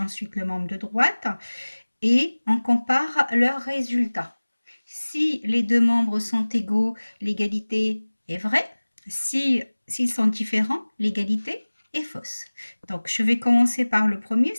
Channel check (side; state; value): both; inverted; correlation -1.00